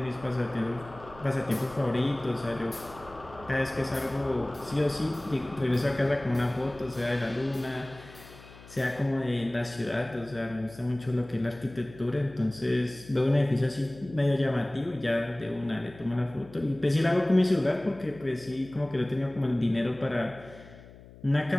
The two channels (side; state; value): left; noise; hum, 20 dB below the sound